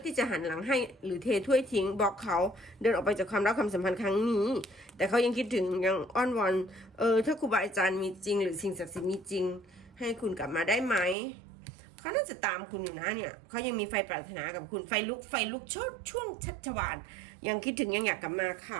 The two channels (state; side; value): drops out; left; at 11.2 s